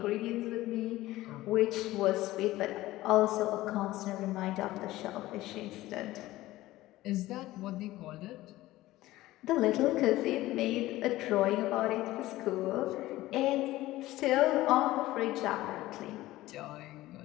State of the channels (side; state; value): right; quieter; 16.9 dB